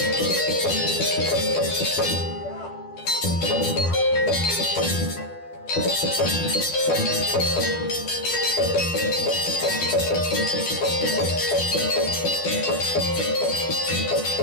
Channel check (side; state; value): right; late; 12 ms